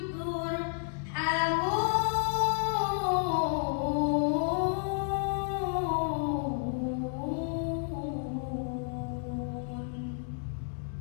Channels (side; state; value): right; silent; digital silence